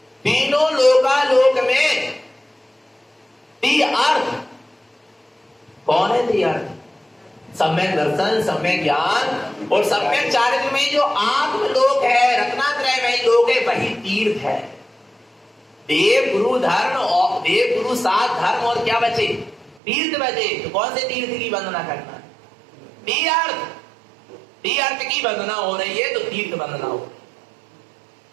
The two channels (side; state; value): left; drops out; at 19.8 s